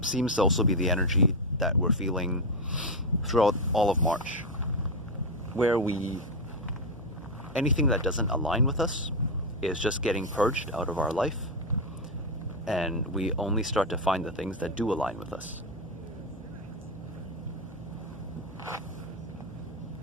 seems to also be the energy that we're feeling throughout all of March, where anything that doesn't align with us is just getting purged out of our life, and we only start to find the things that do align with us.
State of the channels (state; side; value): normal; both; correlation 0.07